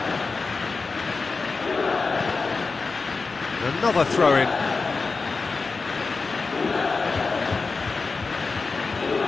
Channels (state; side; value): quieter; right; 4.2 dB